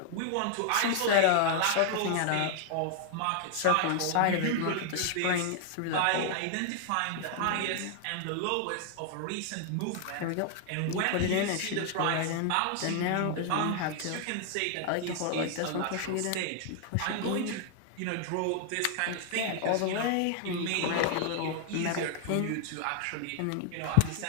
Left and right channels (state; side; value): different; both; correlation 0.00